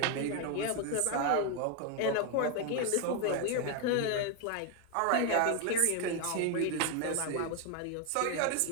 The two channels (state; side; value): different; both; correlation 0.01